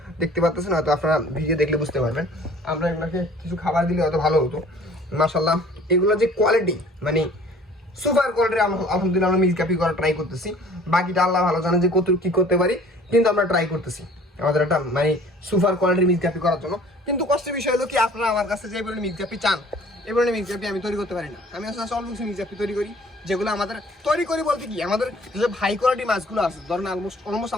দেখতে পাচ্ছেন হয়তো আপনারা ভিডিও দেখলে বুঝতে পারবেন। আমরা এগুলোকে কিছু খাবার দিলে হয়তো ভালো হতো। মাশাআল্লাহ এগুলো যে কোয়ালিটি মানে সুপার কোয়ালিটির, আলহামদুলিল্লাহ আমরা মিক্স গাপ্পি করার ট্রাই করতেছি। বাকিটা আল্লাহ ভালো জানে যে কত কী করতে পারি, কিন্তু আমরা ট্রাই করতেছি আমাদের একটা মানে সুপার কোয়ালিটির মিক্স গাপ্পি করার জন্য। কিন্তু কষ্টের বিষয় হলো কি, আপনারা আমার কাছে যে বলে মিক্স গাপ্পি চান, এবার মিক্স গাপ্পি আমি তৈরি করতে পারি না। আমি আসলে অল্প কিছু মিক্স গাপ্পি তৈরি করি, যেগুলো আমাদের তৈরি করি বলতে কি, আমাদের যেসব হাই কোয়ালিটি মাছগুলো আছে, ধরেন অলমোস্ট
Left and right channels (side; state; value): both; normal; correlation 0.51